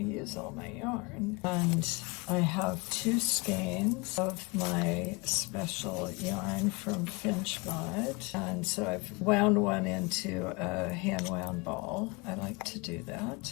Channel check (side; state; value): right; quieter; 27.3 dB